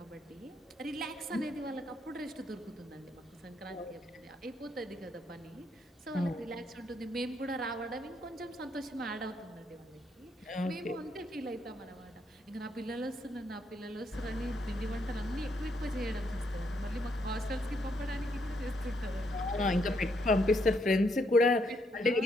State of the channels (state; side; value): normal; both; correlation 0.75